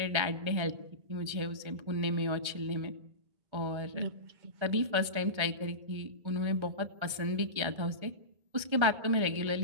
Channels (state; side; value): late; left; 1.3 ms